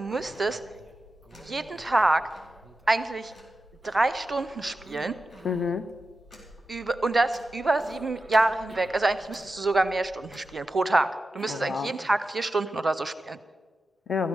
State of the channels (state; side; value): normal; both; correlation 0.91